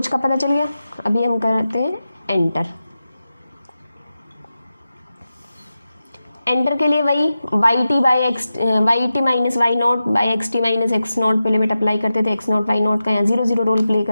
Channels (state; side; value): inverted; both; correlation -0.93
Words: का पता चल गया। अभी हम करते हैं एंटर। एंटर के लिए वही Y T minus why not by x T minus x naught पे लिमिट अप्लाई करते थे। एक्स नॉट वाई नॉट का यहाँ 0 0 रोल प्ले